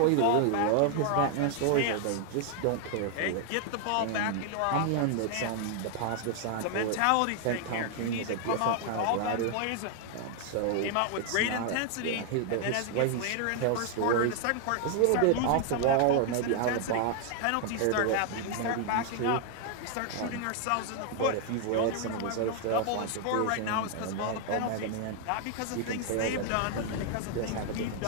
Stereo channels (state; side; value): different; both; correlation 0.00